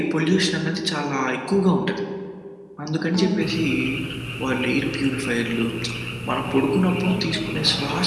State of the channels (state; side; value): identical; both; correlation 1.00